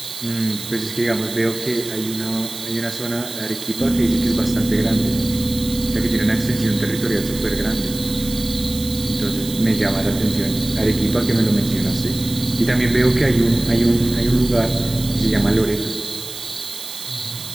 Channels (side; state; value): right; noise; hiss, 11 dB below the sound